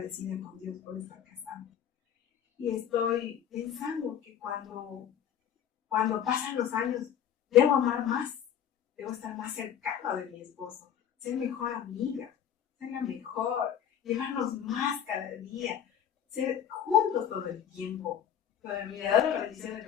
con Dios por estar casada. Y estoy pensando que cuando pasan los años, debo amar más, debo estar más cercana de mi esposo, ser mejor amiga, ser la mejor, llevarnos más cada día, ser juntos todo el tiempo. Pero me ha dado la bendición de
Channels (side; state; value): right; quieter; 9.3 dB